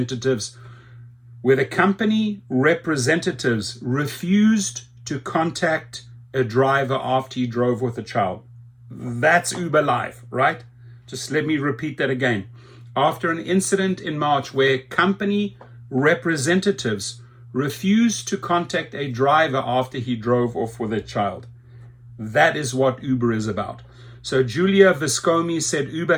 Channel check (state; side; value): identical; both; correlation 1.00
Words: refused to contact a driver after he drove with a child. That's Uber Live, right? Just let me repeat that again. After an incident in March where company representatives refused to contact a driver after he drove off with a child. That is what Uber is about. So Julia Viscomi said